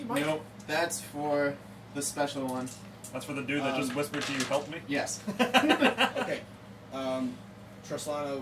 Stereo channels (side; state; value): both; identical; correlation 1.00